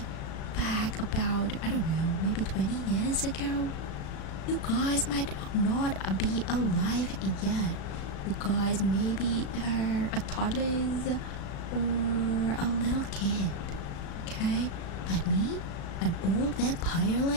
about, I don't know, maybe 20 years ago. You guys might not be alive yet. You guys maybe are a toddlers or a little kid. Okay? But me, an old vampire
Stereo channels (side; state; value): right; late; 36 ms